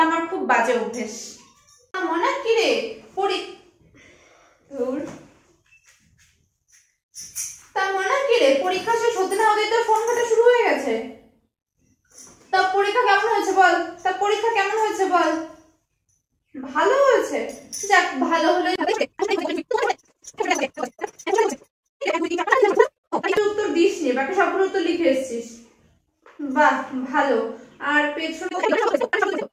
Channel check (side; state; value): both; identical; correlation 1.00